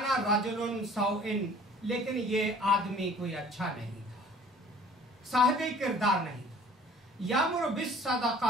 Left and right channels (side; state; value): both; normal; correlation 0.50